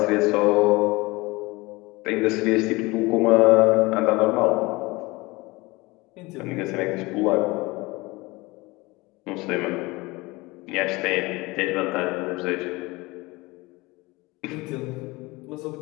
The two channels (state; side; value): quieter; right; 22.7 dB